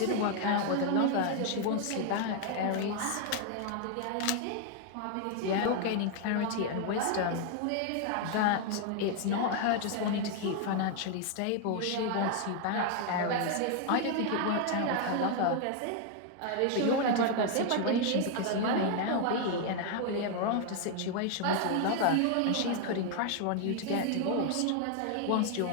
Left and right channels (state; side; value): different; both; correlation 0.00